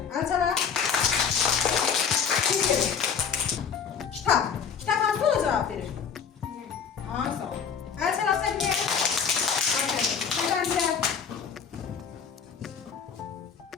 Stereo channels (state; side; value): quieter; right; 6.8 dB